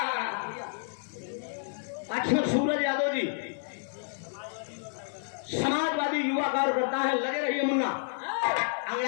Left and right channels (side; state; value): right; silent; digital silence